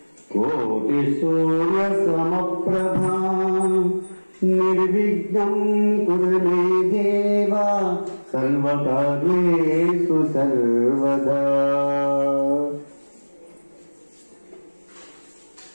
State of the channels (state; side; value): inverted; both; correlation -1.00